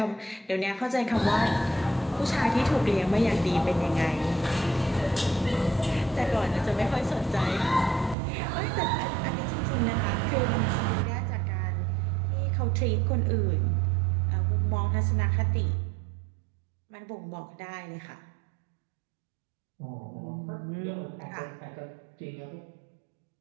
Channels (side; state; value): left; drops out; at 8.2 s